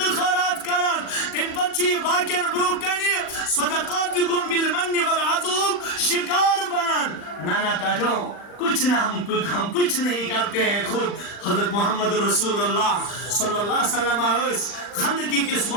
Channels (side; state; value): right; late; 39 ms